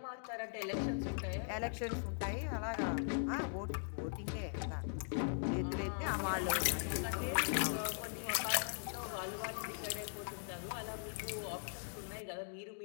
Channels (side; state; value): right; silent; digital silence